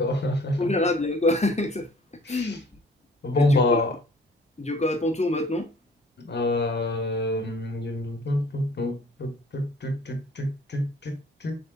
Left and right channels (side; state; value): both; normal; correlation 0.53